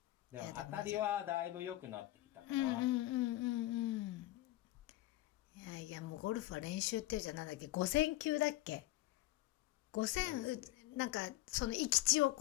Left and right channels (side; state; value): right; quieter; 16.9 dB